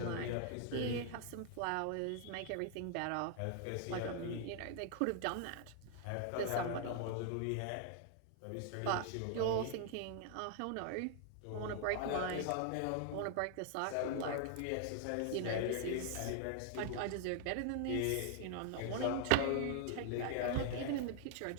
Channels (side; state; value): both; different; correlation 0.00